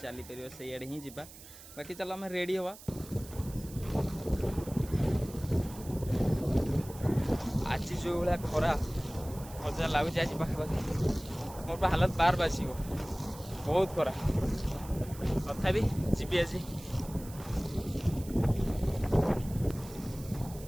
पार से आड़े ही जा बाकी चलो आम रेडी हवा। आज जो भाया खरा मजा लगुच आज पाखापाखि मोर हालत बार बास बहुत खरा तथा जी आज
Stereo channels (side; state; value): right; noise; hiss, 18 dB below the sound